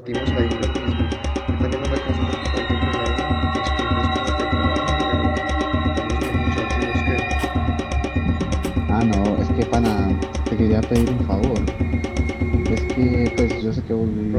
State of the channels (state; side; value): identical; both; correlation 1.00